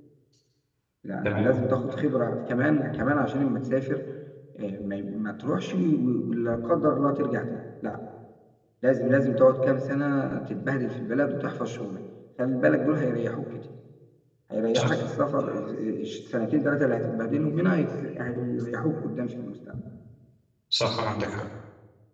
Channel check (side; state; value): both; identical; correlation 1.00